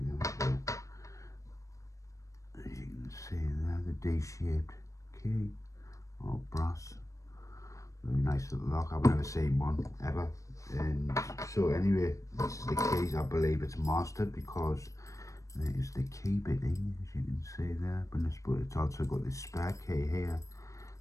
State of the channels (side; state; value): right; late; 0.15 ms